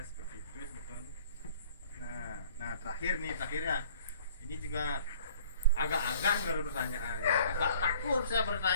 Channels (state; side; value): inverted; both; correlation -0.52